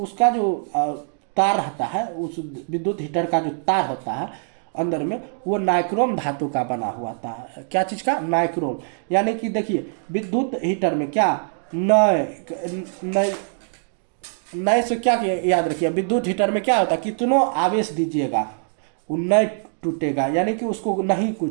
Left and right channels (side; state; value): left; silent; digital silence